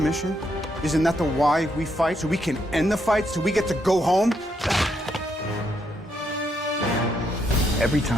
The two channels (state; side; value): normal; both; correlation 0.77